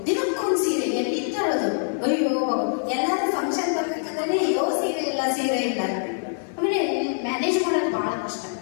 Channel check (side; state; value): right; silent; 62 dB below the other